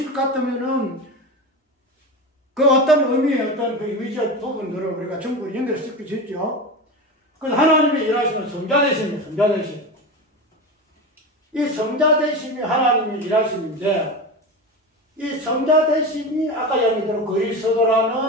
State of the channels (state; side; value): normal; both; correlation 0.24